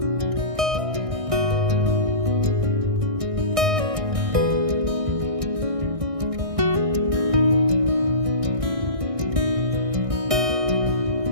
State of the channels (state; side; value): late; left; 1.6 ms